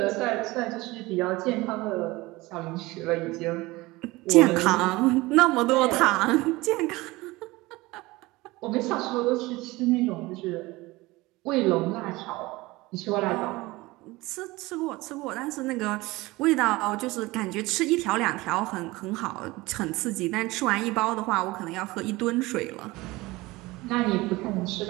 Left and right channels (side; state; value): left; quieter; 21.0 dB